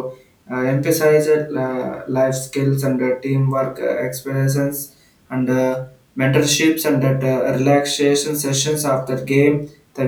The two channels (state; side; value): identical; both; correlation 1.00